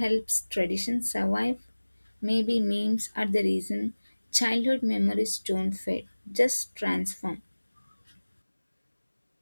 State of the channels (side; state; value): both; inverted; correlation -1.00